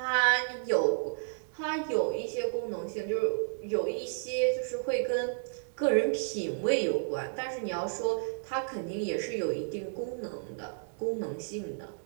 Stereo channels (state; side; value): silent; left; 57 dB below the other